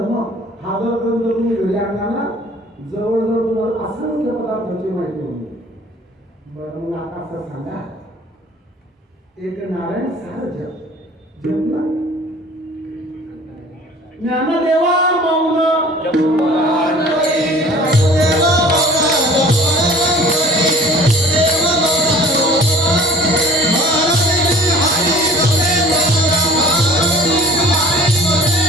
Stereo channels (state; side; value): normal; both; correlation 0.48